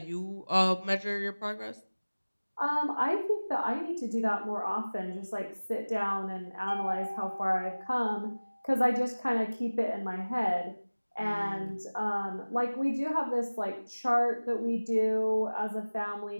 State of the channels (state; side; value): inverted; both; correlation -1.00